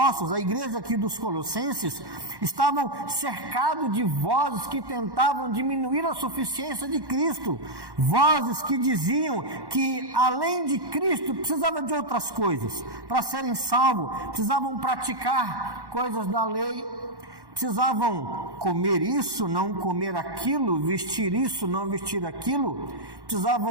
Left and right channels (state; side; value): late; left; 1.1 ms